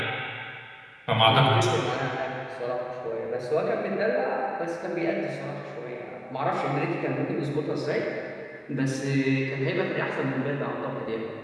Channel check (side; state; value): both; identical; correlation 1.00